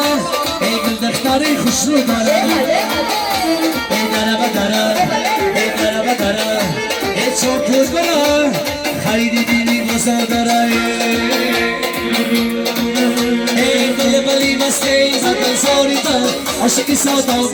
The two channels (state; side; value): identical; both; correlation 1.00